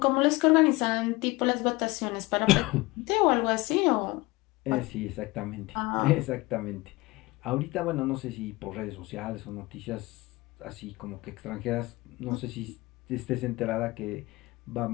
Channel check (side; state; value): right; quieter; 22.0 dB